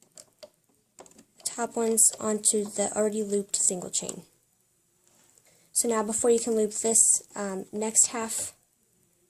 the top ones onto the already looped single chain. So now before you can loop this next half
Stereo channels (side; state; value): both; identical; correlation 1.00